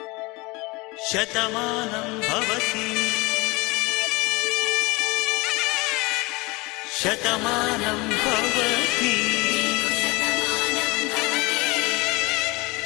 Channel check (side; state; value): right; quieter; 24.7 dB